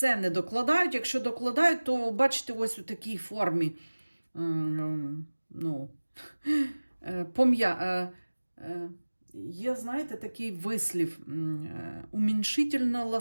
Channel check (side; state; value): both; inverted; correlation -1.00